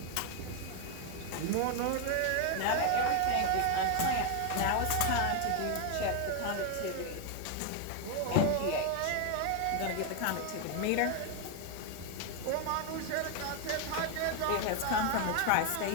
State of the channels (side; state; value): both; different; correlation 0.01